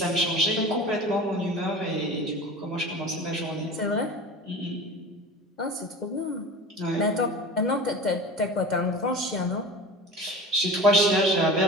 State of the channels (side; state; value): both; normal; correlation 0.36